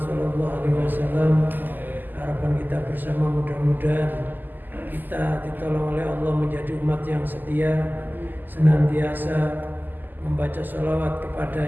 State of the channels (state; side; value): late; left; 0.088 ms